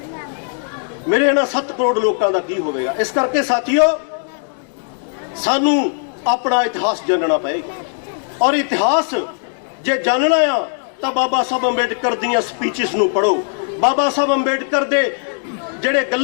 मेरे इन्हां 7 करोड़ लोगों का की होवेगा। इस करके साथियों सानू अपना इतिहास जानना पएगा और इतिहास जे जानना आ तो बाबा साहब अंबेडकर दीयां स्पीचेस नूं पढ़ो, बाबा साहब अंबेडकर दे ਜਿਹੜੇ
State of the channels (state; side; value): silent; right; 67 dB below the other